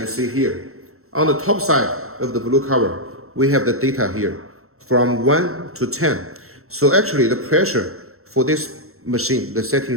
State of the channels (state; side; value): late; left; 0.63 ms